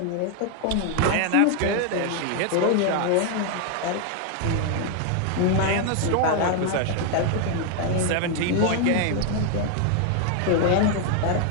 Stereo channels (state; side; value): different; both; correlation 0.00